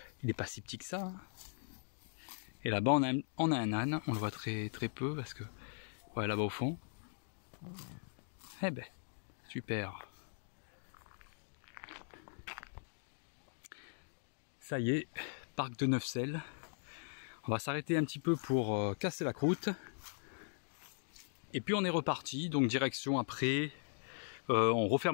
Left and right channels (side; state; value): right; silent; digital silence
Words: il n'est pas si petit que ça. Hein. Et là-bas on a un âne, on le voit très peu parce que, ouais, là-bas au fond. Eh ben, super. Ça y est, parc de Neufsel. On va s'arrêter un petit peu pour casser la croûte. Et puis on est reparti, donc direction après, on